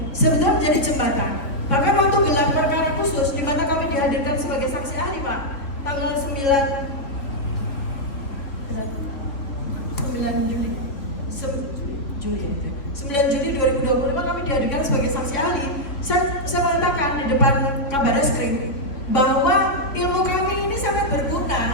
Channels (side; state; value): right; late; 3.6 ms